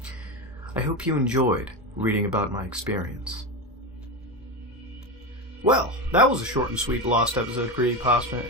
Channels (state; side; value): normal; both; correlation 0.17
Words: I hope you enjoyed reading about my experience. Well, that was a short and sweet Lost episode